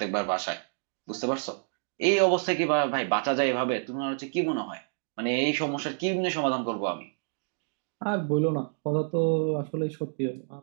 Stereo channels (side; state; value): left; silent; digital silence